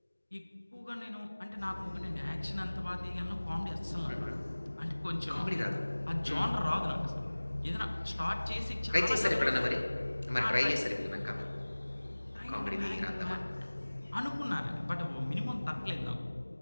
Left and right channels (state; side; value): inverted; both; correlation -1.00